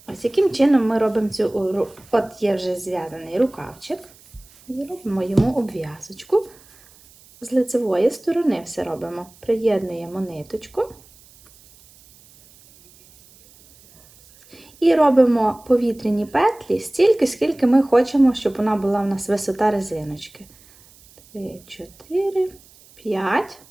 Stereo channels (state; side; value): noise; right; hiss, 26 dB below the sound